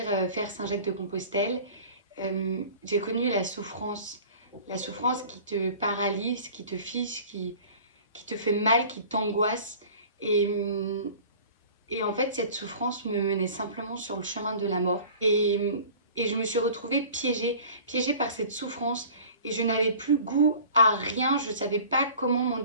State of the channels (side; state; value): both; inverted; correlation -0.44